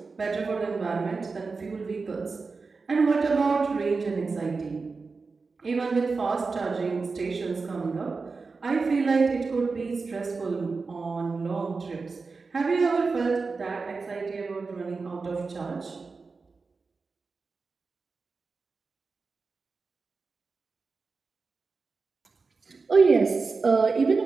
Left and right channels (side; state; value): left; quieter; 4.3 dB